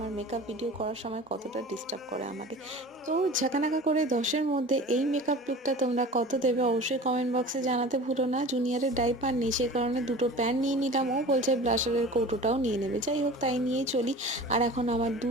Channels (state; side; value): normal; both; correlation 0.39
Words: মেকআপ ভিডিও করার সময় কতটা ডিস্টার্ব করে আমাকে। তো ঝাঁকানাকা করে 10-এর মধ্যে এই মেকআপ লুকটা তোমরা কত দেবে অবশ্যই কমেন্ট বক্সে জানাতে ভুলো না। জুনিয়রের ডাইপার নেই, সে কারণে দুটো প্যান নিয়ে নিলাম, ও বলছে ব্লাশারের কৌটোটাও নিয়ে নেবে। যাই হোক, তাই নিয়েই চলি। আর এখন আমার